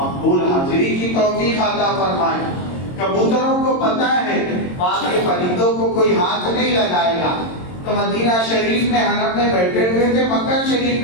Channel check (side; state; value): right; late; 22 ms